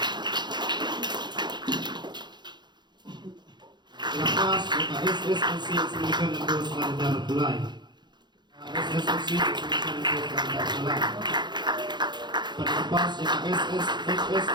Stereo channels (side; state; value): left; late; 0.21 ms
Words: Lepas Maka SSLC Exhibition Info Selantar Bulai SSLC Exhibition Info Selantar Bulai Pada lepas Maka